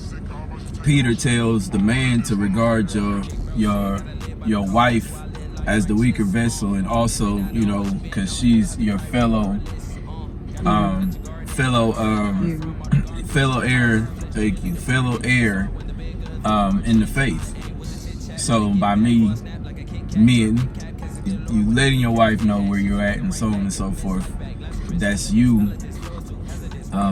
Peter tells the man to regard your wife as the weaker vessel, and also, you know, because she's your fellow heir. Thank you, fellow heir in the faith. So by men, you letting your wife know where you're at, and so on and so forth. That's you.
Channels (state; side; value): identical; both; correlation 1.00